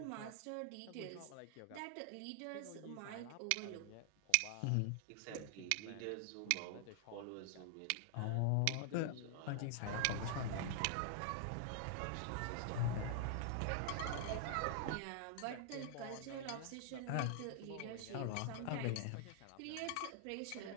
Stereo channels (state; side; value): different; both; correlation 0.00